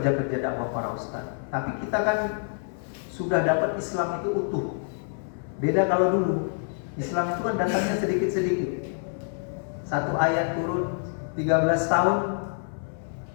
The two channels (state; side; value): silent; right; 60 dB below the other